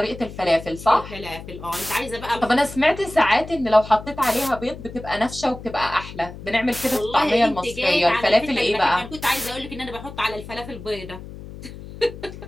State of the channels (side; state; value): left; noise; hum, 13 dB below the sound